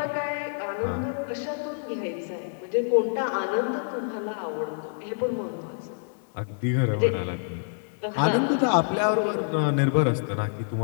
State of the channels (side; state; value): right; silent; digital silence